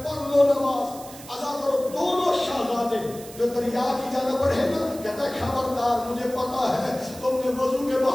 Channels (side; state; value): right; noise; hiss, 17 dB below the sound